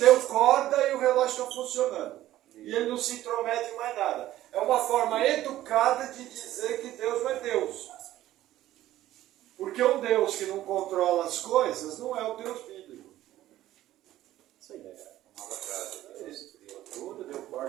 corda e o relógio está funcionando. E ele não se intromete em mais nada. É uma forma educada de dizer que Deus não é Deus. Porque um Deus que não controla as coisas não é o Deus bíblico. Isso aí,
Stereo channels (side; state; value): left; quieter; 14.2 dB